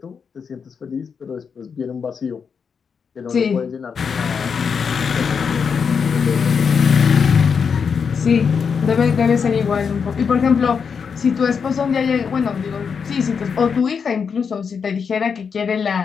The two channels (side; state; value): right; quieter; 6.2 dB